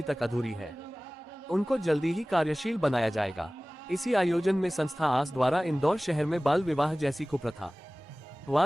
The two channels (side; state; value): both; normal; correlation 0.98